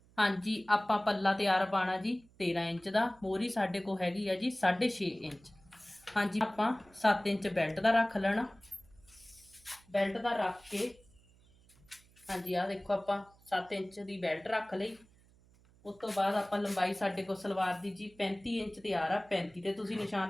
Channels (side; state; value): right; noise; hum, 28 dB below the sound